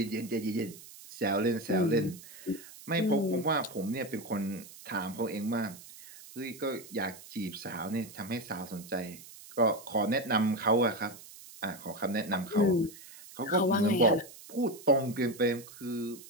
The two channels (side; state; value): right; noise; hiss, 18 dB below the sound